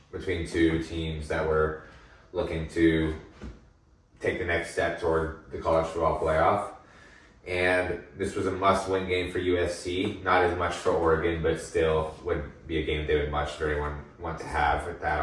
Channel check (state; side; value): identical; both; correlation 1.00